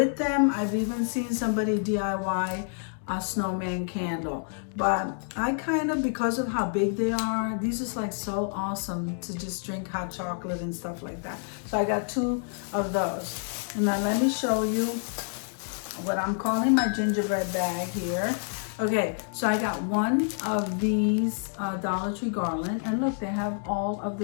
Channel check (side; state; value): right; silent; 59 dB below the other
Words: them. I've even seen somebody DIY a snowman candle, but I kind of, because of how big they are, these is like so awesome to just drink hot chocolate and stuff like that. So I got 2 of those. And now let me show you what I'm calling my gingerbread bag here. Okay, so I got 1 of these Dollar Tree garland, and look, they have all of